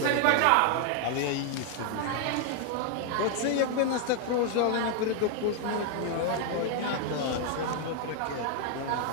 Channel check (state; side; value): different; both; correlation 0.00